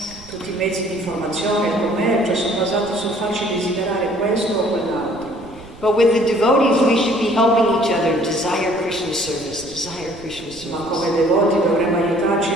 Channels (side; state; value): right; noise; rumble, 21 dB below the sound